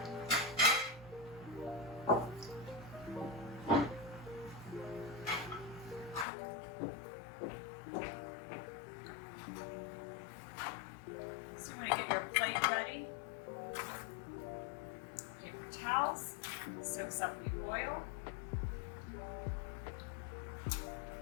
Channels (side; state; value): right; drops out; at 6.2 s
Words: So you want to get your plate ready. Paper towels, soaks up the oil.